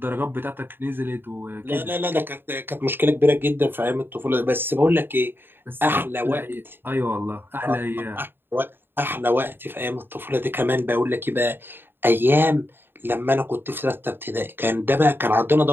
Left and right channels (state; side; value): late; left; 0.10 ms